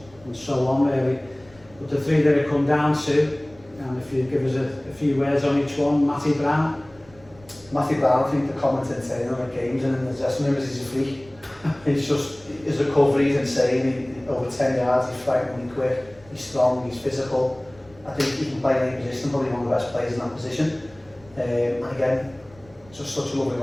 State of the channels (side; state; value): right; noise; rumble, 25 dB below the sound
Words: and so on really. But the 3 that it come down to, and if you give us a few words on each one, Matty Brown. Matthew Brown, I think the commenting saying on the games and in the dressing room is he's a freak. He's just, his recovery is insane. Over 10 yards, he's frighteningly quick, he's strong, he's physical. I think he can play in any position, probably one of the best players in that position. And again, just such a lovely